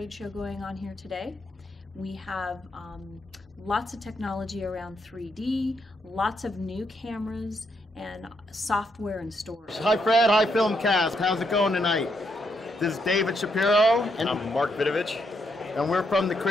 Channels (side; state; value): both; normal; correlation 0.77